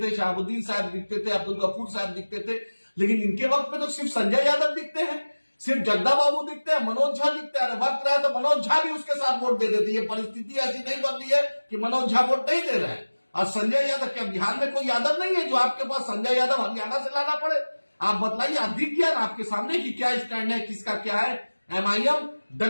थे, शहाबुद्दीन साहब दिखते थे, अब्दुल गफूर साहब दिखते थे, लेकिन इनके वक्त में तो सिर्फ संजय यादव दिखते हैं, सिर्फ जगदा बाबू दिखते हैं, मनोज झा दिखते हैं। वक्त रहा तो मनोज झा भी उसके साथ वोट दे देते। ये परिस्थिति ऐसी नहीं बन रही है कि मनोज झा वोट नहीं दे रहे हैं। और संजय यादव, क्या बिहार में कोई यादव नहीं है जो आपके पास संजय यादव हरियाणा से लाना पड़े? आप बताइए, आप दिख गया ना आपके सामने कि क्या स्टैंड है, किसका क्या है। एमआईएम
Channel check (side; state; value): both; inverted; correlation -1.00